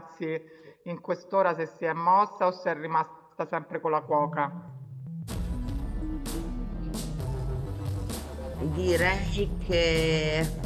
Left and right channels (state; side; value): identical; both; correlation 1.00